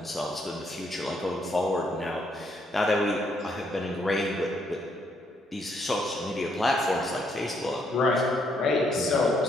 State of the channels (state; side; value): normal; both; correlation 0.73